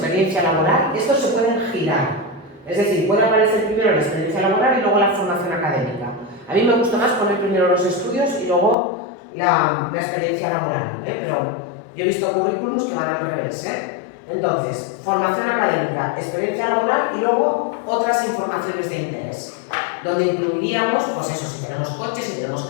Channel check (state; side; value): drops out; right; at 8.8 s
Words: laboral. Estos se pueden girar. Es decir, puede aparecer primero la experiencia laboral y luego la formación académica. A mí me gusta más poner primero los estudios y luego la experiencia laboral, pero yo he visto currículums que van al revés. Entonces, formación académica, experiencia laboral y luego otras informaciones de interés, donde incluiríamos, pues eso, si tenemos coches, si tenemos